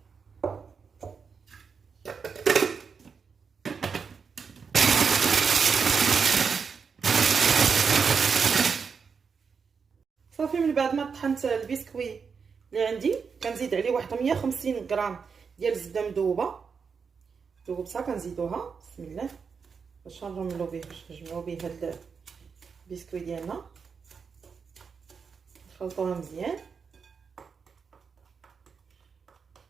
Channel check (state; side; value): quieter; left; 5.8 dB